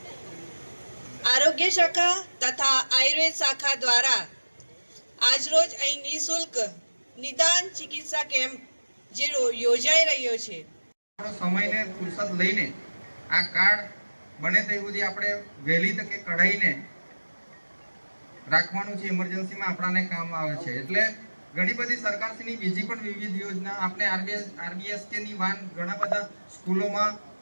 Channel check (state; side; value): inverted; both; correlation -1.00